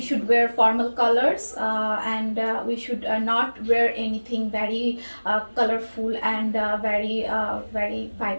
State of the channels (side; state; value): both; inverted; correlation -1.00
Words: wear formal colors, and we should not wear anything very colorful and very